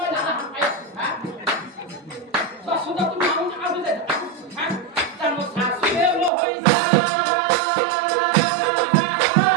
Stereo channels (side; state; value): left; drops out; at 6.3 s